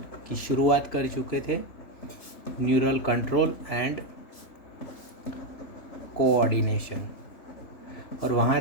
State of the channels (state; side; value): late; right; 3.5 ms